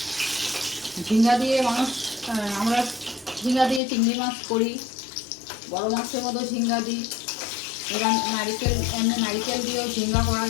ঝিঙ্গা দিয়ে আমরা ঝিঙ্গা দিয়ে চিংড়ি মাছ করি, বড় মাছের মতো ঝিঙ্গা দিই। এবার নারিকেল দিয়েও ঝিঙ্গা করা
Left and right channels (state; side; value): drops out; right; at 3.8 s